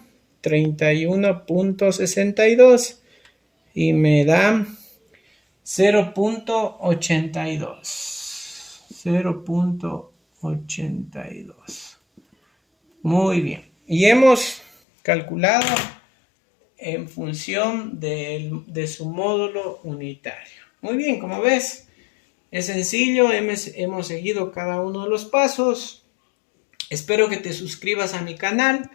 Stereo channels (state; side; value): drops out; right; at 14.7 s